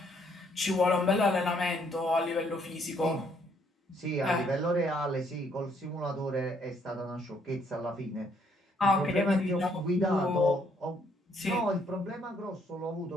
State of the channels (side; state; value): both; normal; correlation 0.68